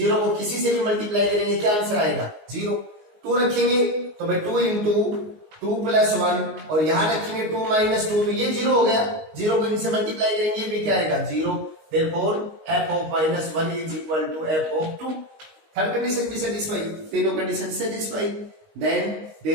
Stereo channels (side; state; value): left; late; 19 ms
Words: को किसी से भी मल्टीप्लाई करेंगे क्या आंसर आएगा 0। 2 रखेंगे तो भाई 2 इंटू 2 प्लस 1 और यहां रखेंगे 2 माइनस 2, तो ये 0 हो गया, 0 को इनसे मल्टीप्लाई करेंगे भी क्या आएगा 0। Therefore f of -1 is equal to f of 2। Third condition भी सेटिस्फाई, तीनों condition satisfy. Then